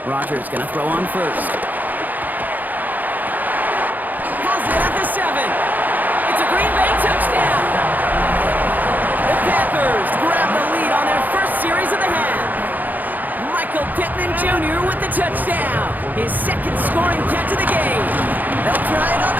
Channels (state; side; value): late; left; 0.083 ms